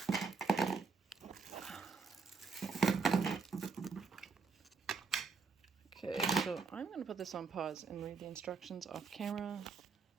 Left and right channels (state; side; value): quieter; left; 5.0 dB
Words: okay, so I'm going to put this on pause and read the instructions off camera.